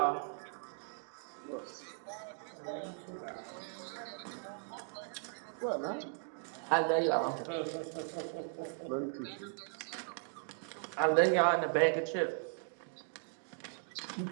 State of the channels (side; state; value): left; silent; 53 dB below the other